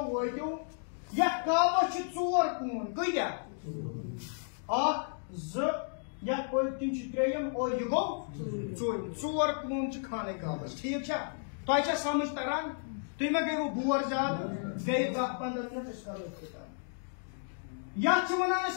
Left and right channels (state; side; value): silent; right; digital silence